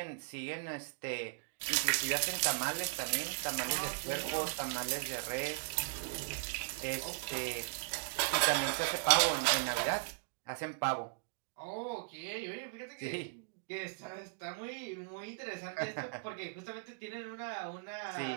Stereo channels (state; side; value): silent; left; digital silence